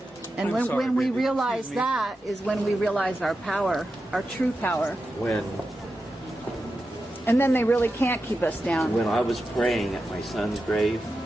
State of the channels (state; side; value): normal; both; correlation 0.90